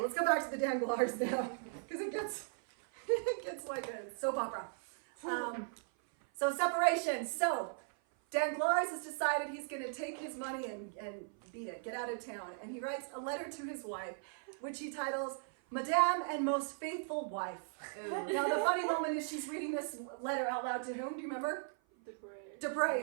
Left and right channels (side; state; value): left; silent; 53 dB below the other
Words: let's go back to the Danglars now, because it gets like a soap opera. So separation. So Danglars has decided he's going to take his money and beat it, get out of town. And he writes a letter to his wife, which he titles, Madame and Most Faithful Wife. Now the funny moment is she's reading this letter out loud to whom? Do you remember?